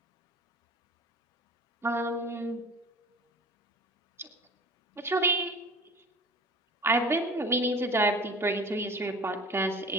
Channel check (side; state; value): both; normal; correlation 0.41